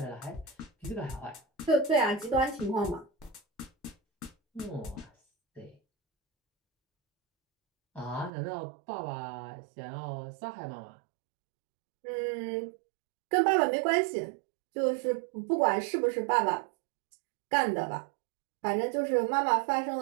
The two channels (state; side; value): drops out; left; at 8.3 s